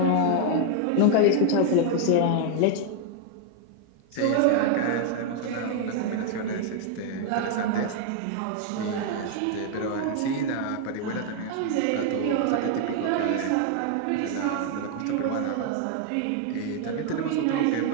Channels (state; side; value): different; both; correlation 0.00